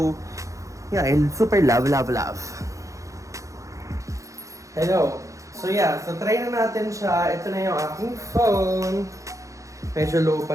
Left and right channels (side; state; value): left; late; 0.15 ms